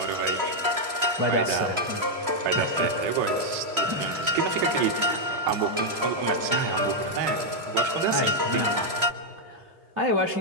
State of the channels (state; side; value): late; left; 3.0 ms